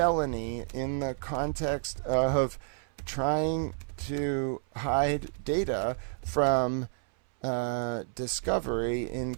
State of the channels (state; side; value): silent; left; 58 dB below the other